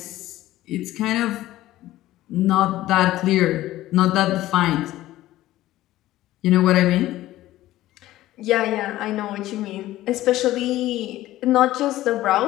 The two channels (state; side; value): quieter; right; 15.4 dB